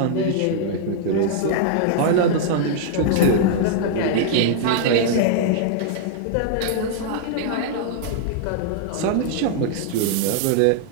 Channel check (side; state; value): both; different; correlation -0.01